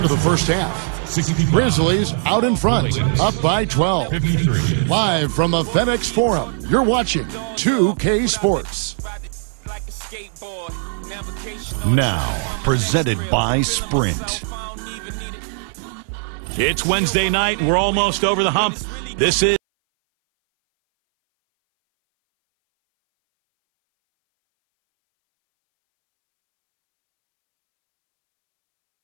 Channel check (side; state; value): left; silent; 60 dB below the other